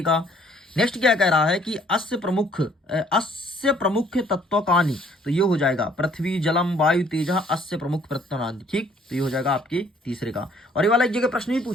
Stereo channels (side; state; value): both; normal; correlation 0.61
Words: का। नेक्स्ट क्या कह रहा है कि अस्य प्रमुख तत्वकानि, तो ये हो जाएगा पृथ्वी जलम वायु तेज अस्य प्रमुख तत्वकानि, ठीक। तो ये हो जाएगा आपके तीसरे का। और ये वाला एक जगह प्रश्न भी